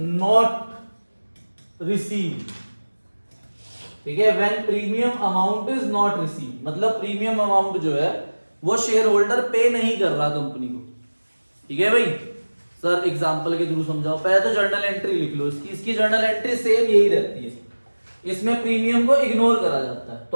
received, ठीक है। When premium amount is not received, मतलब प्रीमियम अमाउंट जो है वो शेयर होल्डर पे नहीं कर रहा कंपनी को, ठीक है भाई। सर एग्जांपल के थ्रू समझाओ। पहले तो जर्नल एंट्री लिख लो इसकी जर्नल एंट्री सेम यही रहती है, इसमें प्रीमियम को इग्नोर करा जाता है। तो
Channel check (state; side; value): inverted; both; correlation -1.00